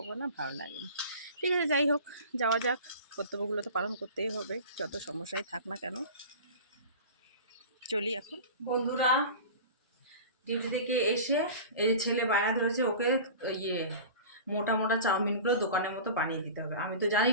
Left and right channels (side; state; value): both; inverted; correlation -0.37